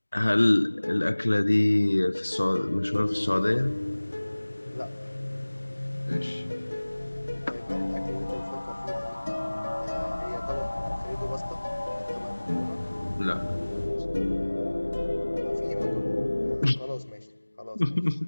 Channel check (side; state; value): both; inverted; correlation -1.00